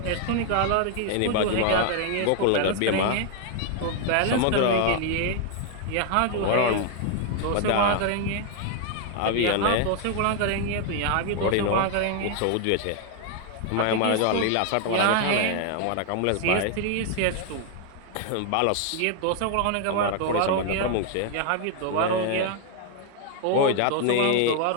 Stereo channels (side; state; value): both; different; correlation 0.00